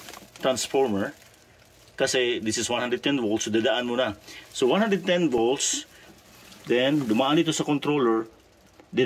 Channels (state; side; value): identical; both; correlation 1.00